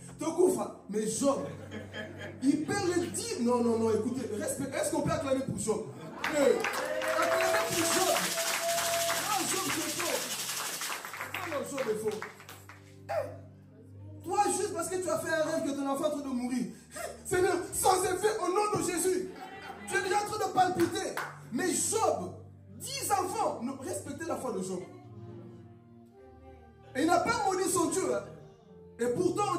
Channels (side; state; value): both; identical; correlation 1.00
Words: Mais Job, il perd les 10. Non, écoutez, respect. Est-ce qu'on peut acclamer pour Job? Acclamer pour Job. Non, Job, c'est faux. Non, Job est faux. Toi, juste parce que tu as fait un rêve que ton enfant est en train de mourir. Seigneur, sans effet, au nom de Jésus. Tu es déjà en train de palpiter. Mais Job, 10 enfants, respectez la foi de Job. Et il n'a pas maudit son Dieu. Hein. Et pourtant,